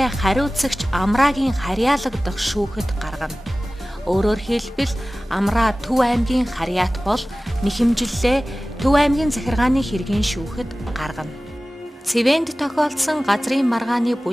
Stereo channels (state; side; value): normal; both; correlation 0.97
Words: хариуцагч Амраагийн харьяалагдах шүүхэд гаргана. Өөрөөр хэлбэл Амраа Төв аймгийн харьяат бол нэхэмжлэлээ Төв аймгийн захиргааны хэргийн шүүхэд гаргана. Цэвэнд тохиолдсон газрын маргааны